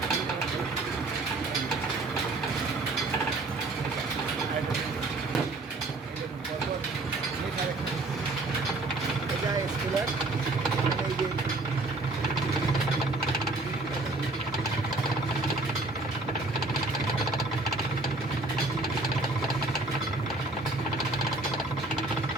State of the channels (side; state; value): left; quieter; 3.0 dB